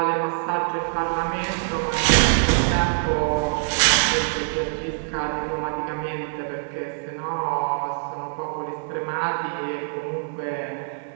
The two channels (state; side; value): silent; left; 62 dB below the other